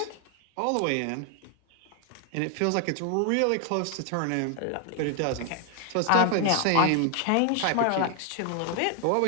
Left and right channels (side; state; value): both; different; correlation 0.00